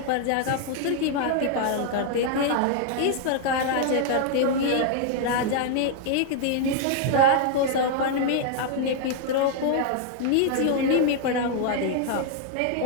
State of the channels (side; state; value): both; different; correlation 0.00